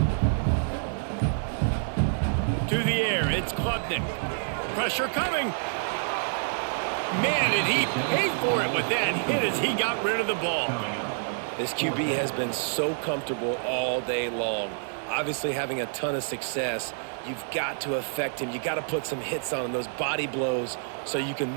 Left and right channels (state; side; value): silent; left; digital silence